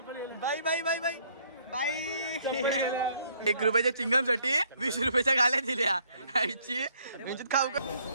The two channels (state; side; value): inverted; both; correlation -0.65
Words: बाई बाई बाई बाई बाई 1 रुपयाच्या चिंगम साठी 20 रुपयाच्या गाल्या दिल्या आईची म्हणजे खाऊ का